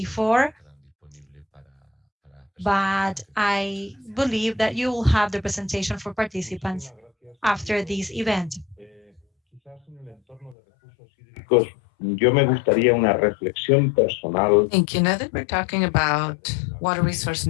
but I believe that you will have the presentation for participants after this event. Yo me gustaría una reflexión personal. Thank you. Now that we're talking about water resource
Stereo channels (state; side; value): drops out; right; at 10.6 s